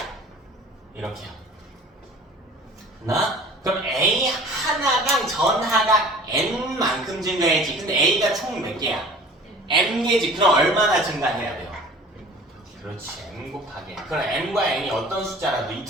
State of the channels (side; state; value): both; normal; correlation 0.45